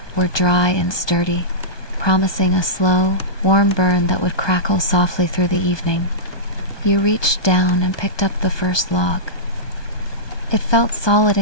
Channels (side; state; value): right; late; 1.2 ms